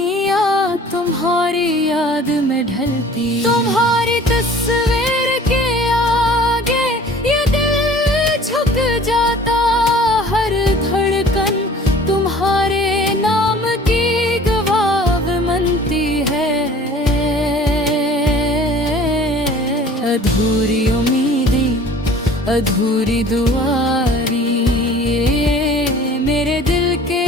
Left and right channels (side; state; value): both; normal; correlation 0.48